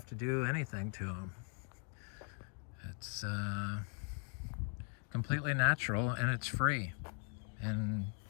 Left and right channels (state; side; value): quieter; right; 39.9 dB